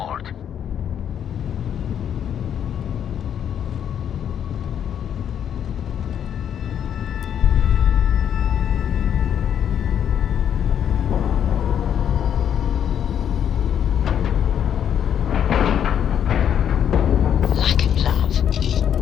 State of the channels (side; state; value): right; quieter; 9.1 dB